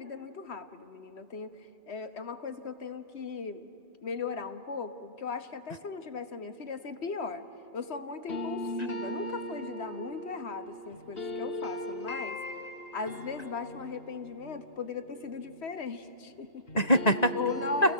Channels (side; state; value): right; late; 1.9 ms